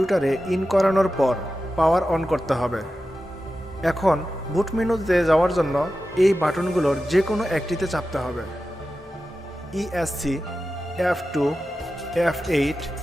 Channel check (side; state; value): both; normal; correlation 0.93